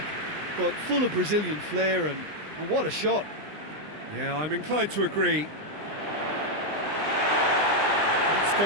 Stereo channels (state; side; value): late; left; 20 ms